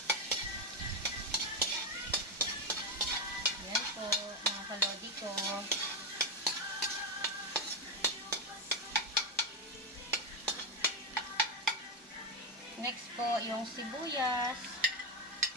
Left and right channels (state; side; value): normal; both; correlation 0.07